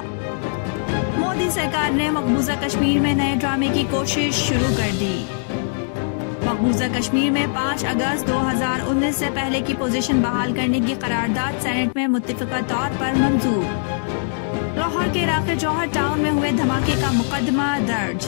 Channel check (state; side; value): silent; right; digital silence